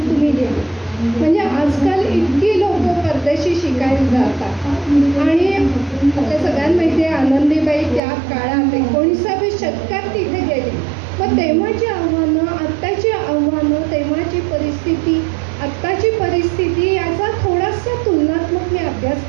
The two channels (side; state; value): left; drops out; at 8.0 s